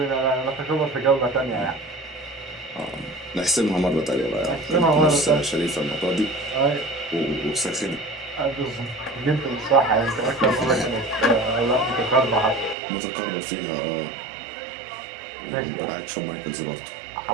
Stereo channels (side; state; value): left; drops out; at 12.8 s